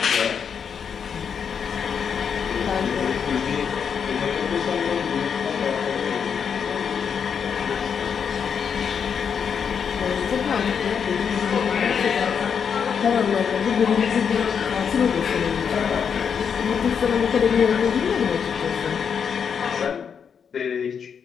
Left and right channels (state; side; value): quieter; right; 7.0 dB